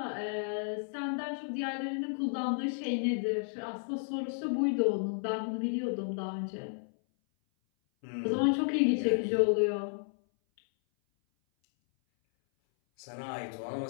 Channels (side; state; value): right; silent; 56 dB below the other